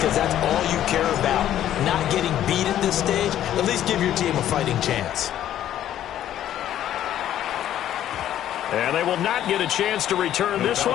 that's all you care about. Not getting beat at this stage. At least give your team a fighting chance. And they will not get a chance to return this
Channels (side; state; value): right; quieter; 11.6 dB